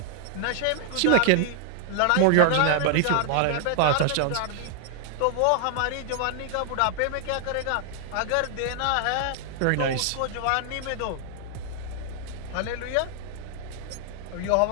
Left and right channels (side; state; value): both; different; correlation 0.00